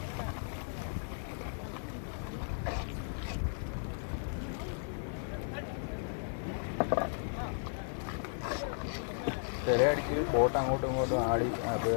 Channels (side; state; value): right; silent; digital silence